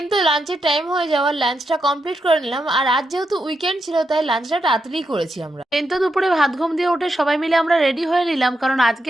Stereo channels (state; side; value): normal; both; correlation 0.84